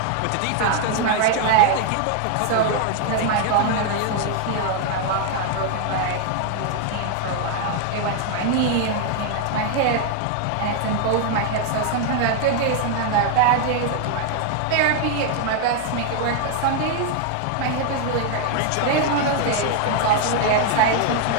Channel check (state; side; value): different; both; correlation 0.00